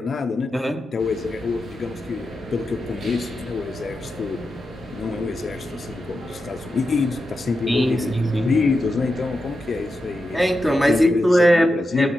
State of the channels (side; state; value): both; normal; correlation 0.89